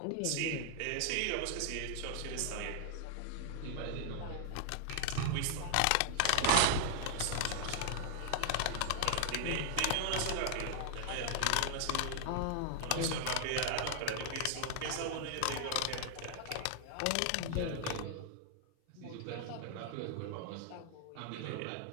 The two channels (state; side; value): different; both; correlation 0.00